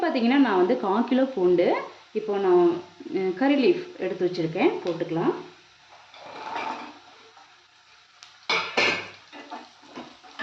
பார்த்திங்கன்னா நான் 1/4 கிலோ பூண்டு இப்போ நான் கறி லீஃப் எடுத்து வச்சுருக்கேன், போட்டுக்கலாம்.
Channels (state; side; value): identical; both; correlation 1.00